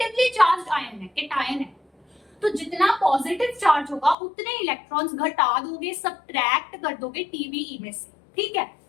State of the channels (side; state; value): right; drops out; at 4.2 s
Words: चार्ज आयन है, केटायन है, तो जितना पॉजिटिव चार्ज होगा उतने इलेक्ट्रॉन्स घटा दोगे, सब्ट्रैक्ट कर दोगे TeVe में से। ठीक है,